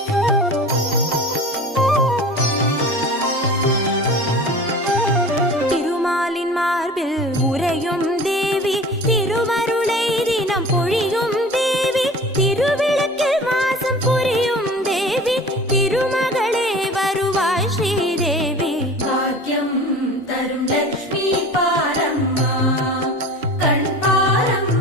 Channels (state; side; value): normal; both; correlation 0.39